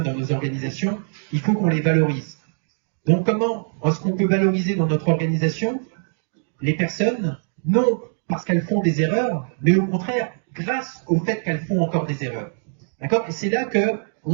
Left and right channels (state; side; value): silent; left; digital silence